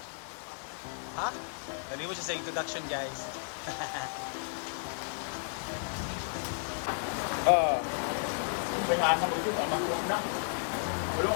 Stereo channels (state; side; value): silent; right; digital silence